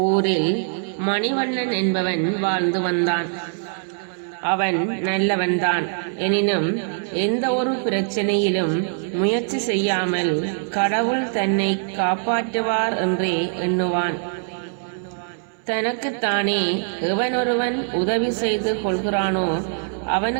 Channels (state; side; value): silent; left; 62 dB below the other